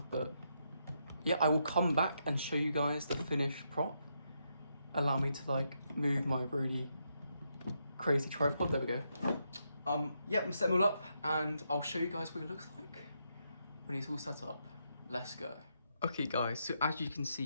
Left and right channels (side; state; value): both; inverted; correlation -0.80